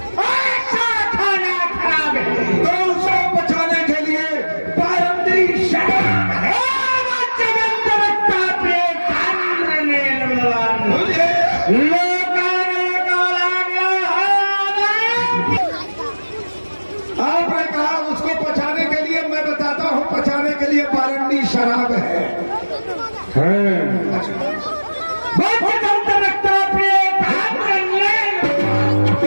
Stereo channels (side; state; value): both; inverted; correlation -1.00